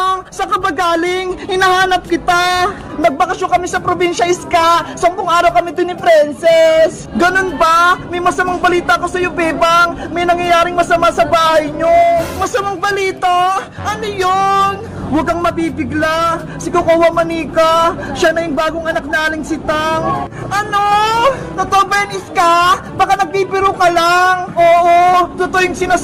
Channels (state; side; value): identical; both; correlation 1.00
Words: saan ka ba galing? Hinahanap kita! Nagbakasyon kami sa probinsya, Iska! 10 araw kami dun ni Princess! Ganun ba? May masamang balita ko sa'yo, Bebang! May nangyayaring masama sa bahay nyo! Masamang balita? Ano yun? Huwag kang mabibigla! Si Kukawa Manika! Siya na yung bagong anak na Aling Sitang! Ano? Totoo ba yan, Iska? Baka nagbibiro ka lang! Oo! Totoo yung